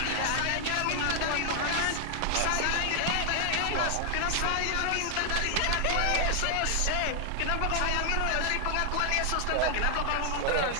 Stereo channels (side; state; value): both; different; correlation 0.00